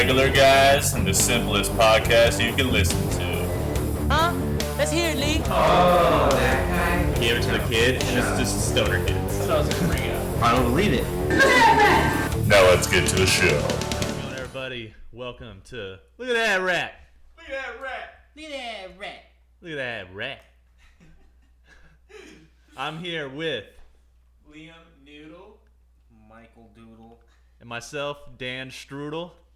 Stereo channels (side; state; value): both; identical; correlation 1.00